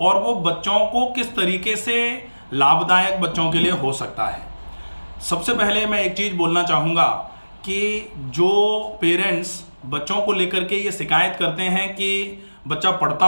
और वो बच्चों को किस तरीके से लाभदायक बच्चों के लिए हो सकता है। सबसे पहले मैं एक चीज़ बोलना चाहूँगा कि जो पेरेंट्स बच्चों को लेकर के ये शिकायत करते हैं कि बच्चा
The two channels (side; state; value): both; inverted; correlation -1.00